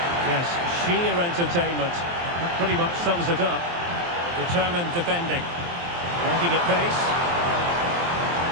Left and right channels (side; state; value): left; late; 23 ms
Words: Yes, sheer entertainment. That pretty much sums it up. Determined defending. Working at pace.